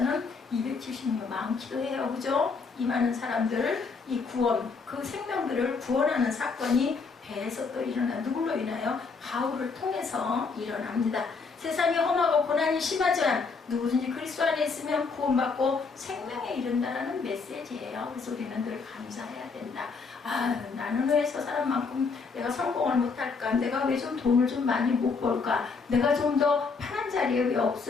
276명 많기도 해요. 그죠? 이 많은 사람들, 이 구원, 그 생명들을 구원하는 사건이 배에서 또 일어나, 누굴로 인하여? 바울을 통해서 일어납니다. 세상이 험하고 고난이 심하지만 누구든지 그리스도 안에 있으면 구원받고 생명에 이른다라는 메시지예요. 그래서 우리는 늘 감사해야 된다. 아, 나는 왜 저 사람만큼 내가 성공을 못할까? 내가 왜 좀 돈을 좀 많이 못 벌까? 내가 좀 더 편한 자리에 왜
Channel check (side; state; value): right; quieter; 4.8 dB